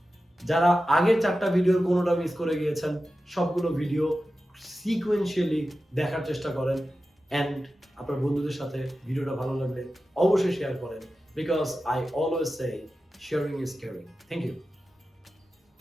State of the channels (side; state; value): both; normal; correlation 0.93